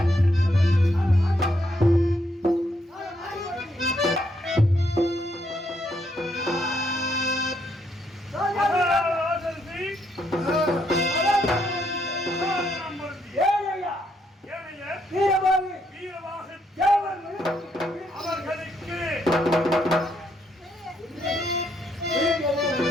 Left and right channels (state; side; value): normal; both; correlation 0.74